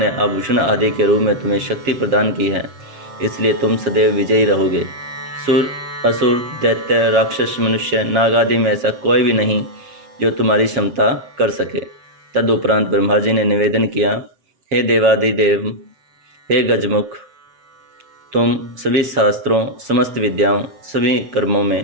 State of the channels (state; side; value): late; left; 7.6 ms